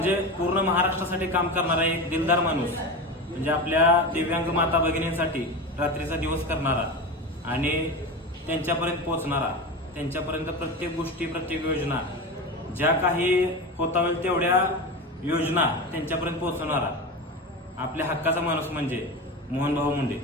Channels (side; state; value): both; normal; correlation 0.24